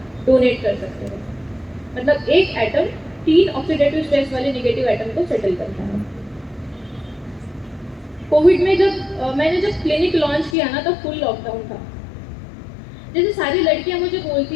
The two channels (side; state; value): right; drops out; at 10.6 s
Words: डोनेट कर सकते हैं। मतलब एक एटम 3 ऑक्सीडेटिव स्ट्रेस वाले नेगेटिव एटम को सेटल करता है। कोविड में मैंने जब क्लिनिक लॉन्च किया ना तब फुल लॉकडाउन था। जैसे सारी लड़कियां मुझे